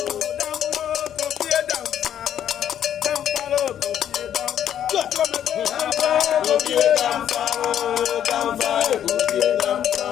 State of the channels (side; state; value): right; quieter; 10.1 dB